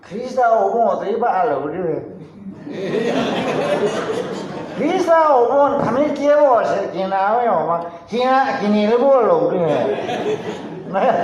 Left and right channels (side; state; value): both; identical; correlation 1.00